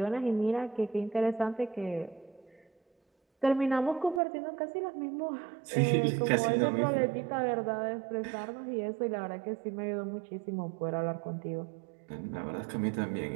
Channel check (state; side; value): drops out; left; at 4.2 s